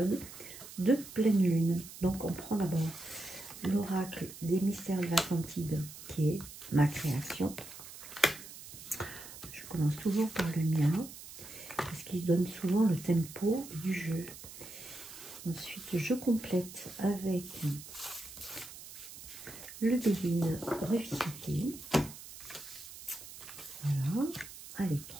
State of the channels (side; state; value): right; noise; hiss, 14 dB below the sound